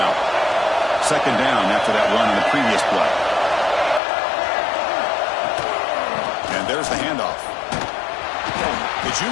Second down after that run in the previous play. And there's the handoff. The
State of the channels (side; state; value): right; drops out; at 4.0 s